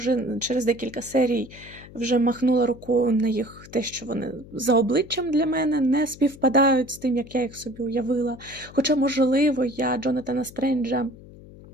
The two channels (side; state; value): left; noise; hum, 19 dB below the sound